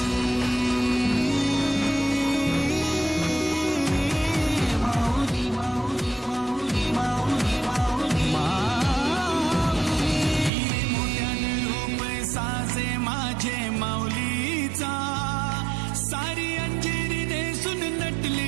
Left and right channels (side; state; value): left; drops out; at 10.5 s